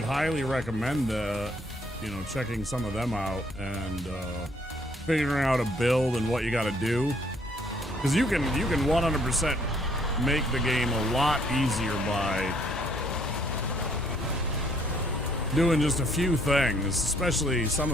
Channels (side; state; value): both; normal; correlation 0.65